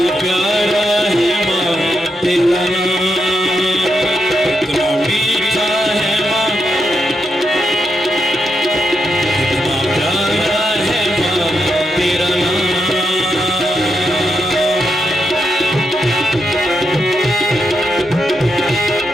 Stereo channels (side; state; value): both; normal; correlation 0.83